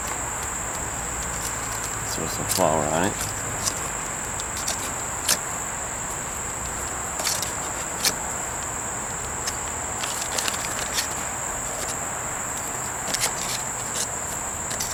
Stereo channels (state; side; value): identical; both; correlation 1.00